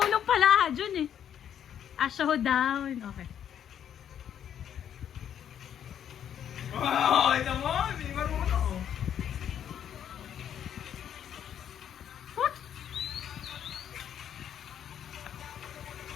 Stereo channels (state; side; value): quieter; right; 9.4 dB